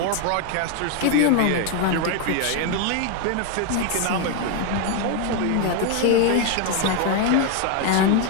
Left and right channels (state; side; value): different; both; correlation 0.01